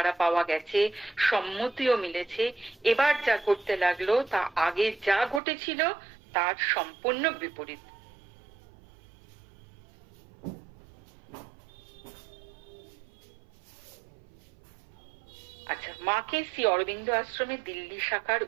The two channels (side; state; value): left; drops out; at 5.4 s